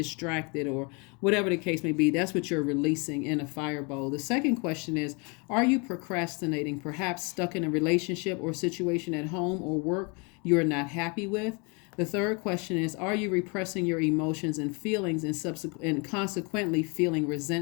or whatever the case may be. That's what you're releasing in a fire bowl. The second question is, are you procrastinating, perhaps stuck in a relationship or situation at home or work you're not happy with? The third question is, are you repressing your emotions and feelings and consequently feeling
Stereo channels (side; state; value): right; quieter; 32.0 dB